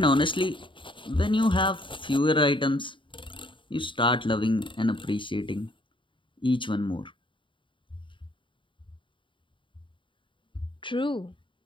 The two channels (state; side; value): late; right; 0.24 ms